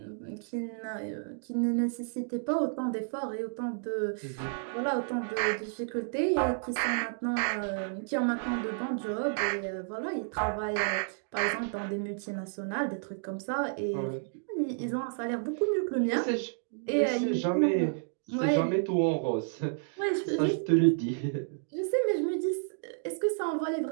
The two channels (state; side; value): silent; left; digital silence